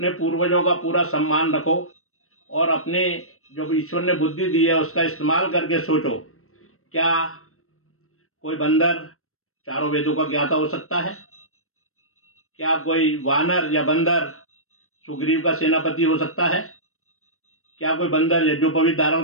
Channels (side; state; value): right; late; 0.63 ms